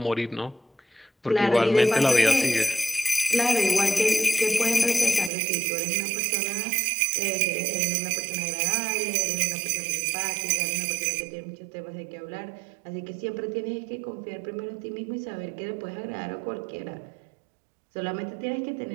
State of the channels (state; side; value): drops out; left; at 5.3 s